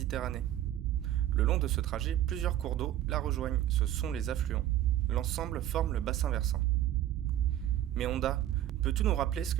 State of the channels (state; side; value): quieter; left; 12.6 dB